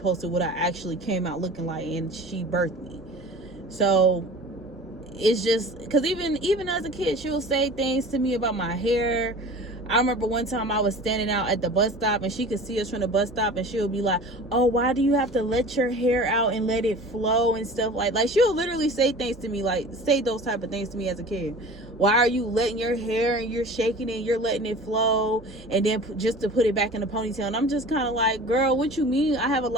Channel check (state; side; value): normal; both; correlation 0.40